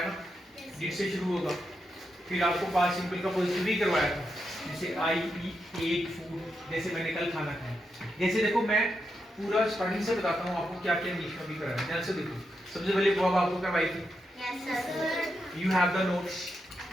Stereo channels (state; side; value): normal; both; correlation 0.84